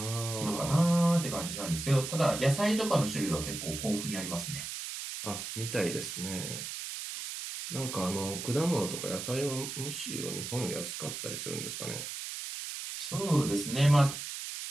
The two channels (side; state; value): right; noise; hiss, 6 dB below the sound